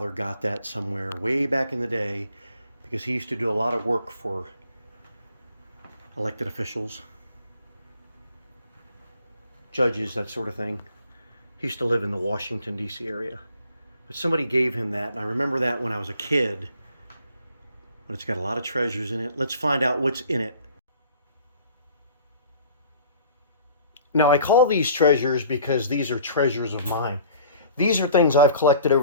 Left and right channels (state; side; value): inverted; both; correlation -0.52